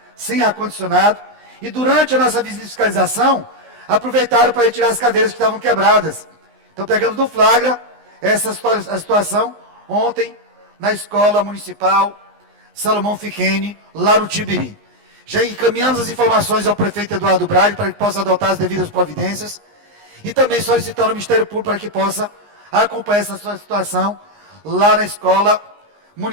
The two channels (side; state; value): left; late; 19 ms